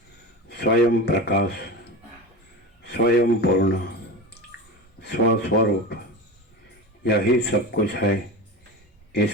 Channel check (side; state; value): both; normal; correlation 0.27